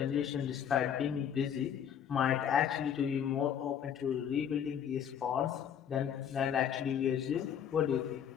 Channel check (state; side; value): quieter; right; 8.8 dB